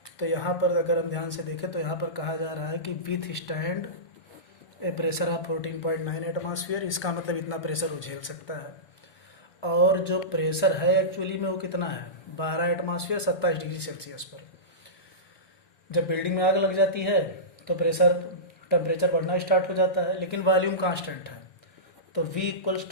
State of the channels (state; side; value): late; right; 1.2 ms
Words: तो यहाँ पर अगर हम ध्यान से देखें तो यहाँ पर कहा जा रहा है कि with stand A pressure of 14.9 atmosphere, इसका मतलब इतना प्रेशर वो झेल सकता है। और जो प्रेशर है एक्चुअली में वो कितना है, 12 एटमॉस्फेयर 27 डिग्री सेल्सियस पर। जब बिल्डिंग में आग लग जाती है तो टेम्परेचर बढ़ना स्टार्ट हो जाता है, लेकिन वॉल्यूम कांस्टेंट है, तो V इक्वल्स